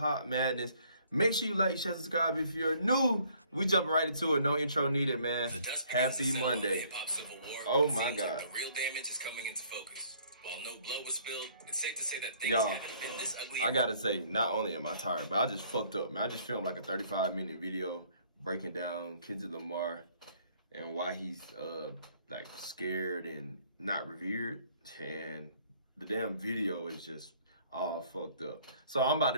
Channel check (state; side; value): inverted; both; correlation -0.61